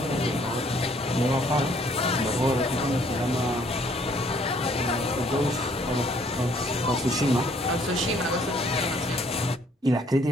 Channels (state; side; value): normal; both; correlation 0.63